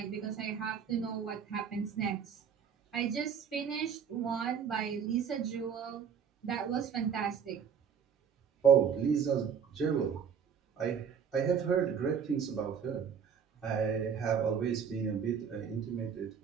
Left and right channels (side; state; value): left; quieter; 7.2 dB